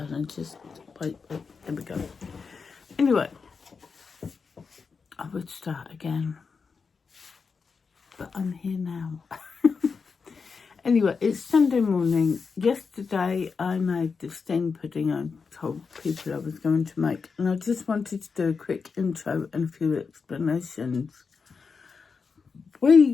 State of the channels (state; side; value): quieter; right; 5.2 dB